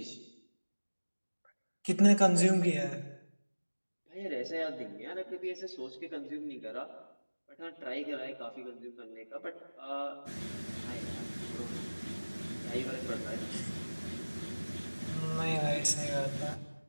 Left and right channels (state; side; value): inverted; both; correlation -1.00